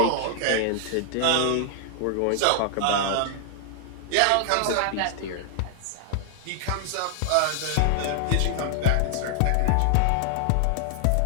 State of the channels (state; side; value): different; both; correlation 0.00